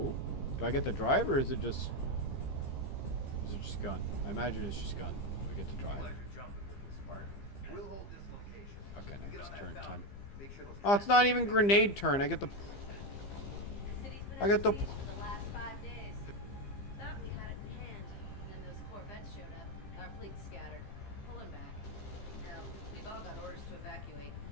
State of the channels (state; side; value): late; right; 15 ms